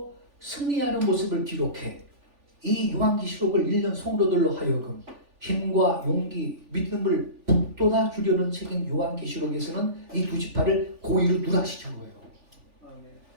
승리하는 모습을 기록해 이 요한계시록을 읽는 성도들로 하여금 힘과 용기, 믿음을 북돋아 주려는 책인 요한계시록에서는 이 두 지파를 고의로 누락시킨 거예요.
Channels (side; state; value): left; late; 3.4 ms